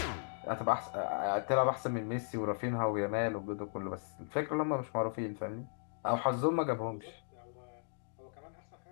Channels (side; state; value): right; silent; digital silence